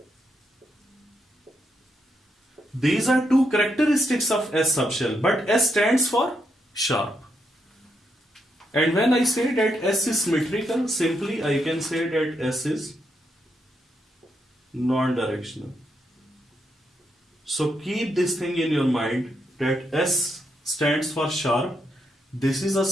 These are two characteristics of S subshell, but S stands for sharp. And when I say that S is symmetrical, simply I can say that S is non-directional. So keep this thing in your mind that S stands for sharp. This is a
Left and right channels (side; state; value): both; normal; correlation 0.80